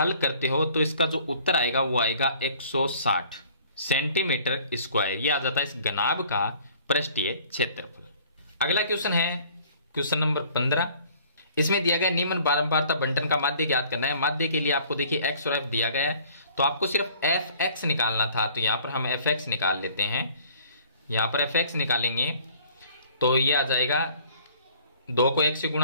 करते हो तो इसका जो उत्तर आएगा वो आएगा 160 सेंटीमीटर स्क्वायर, ये आ जाता है इस घनाभ का पृष्ठीय क्षेत्रफल। अगला क्वेश्चन है क्वेश्चन नंबर 15। इसमें दिया गया निम्न बारंबारता बंटन का माध्य ज्ञात करना है। माध्य के लिए आपको देखिए x और f दिया गया है, तो आपको सिर्फ fx निकालना था, तो यहां पर हम fx निकाल लेते हैं। यहां पर fx निकालेंगे तो ये आ जाएगा, 2 को 1 से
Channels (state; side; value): inverted; both; correlation -0.54